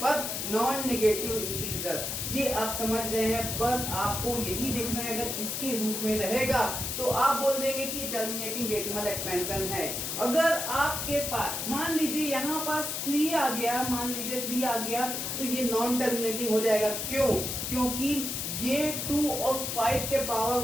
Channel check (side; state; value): left; noise; hiss, 3 dB below the sound